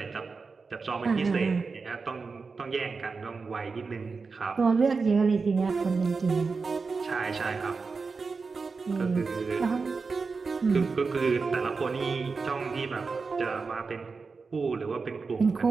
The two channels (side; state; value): left; quieter; 4.6 dB